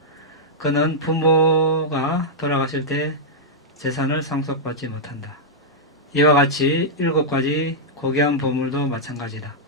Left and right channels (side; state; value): both; normal; correlation -0.08